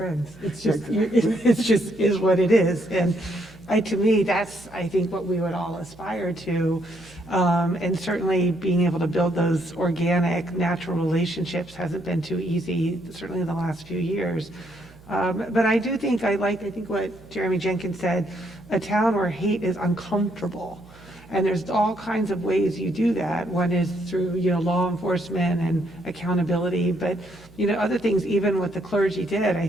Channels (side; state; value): right; noise; hum, 23 dB below the sound